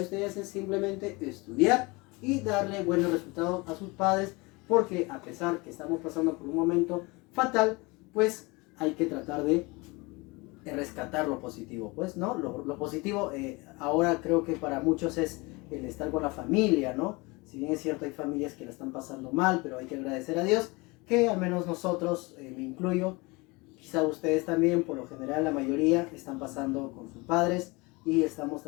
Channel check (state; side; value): quieter; right; 25.4 dB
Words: ustedes es simplemente estudiar y darle buenos resultados a sus padres, porque a pesar que estamos pasando por un momento fatal, pues hay que tratar de rescatar lo positivo, pues, ¿no? Lo positivo ahora creo que para muchos es el estar con la familia, ¿no? Si bien es cierto, hay familias que la están pasando mal, pero hay que agradecer a Dios que al menos nosotros, me incluyo, quizá ustedes también, por lo general la mayoría, están pasando con sus padres y estamos